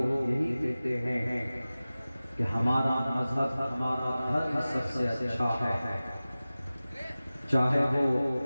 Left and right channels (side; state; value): both; inverted; correlation -0.97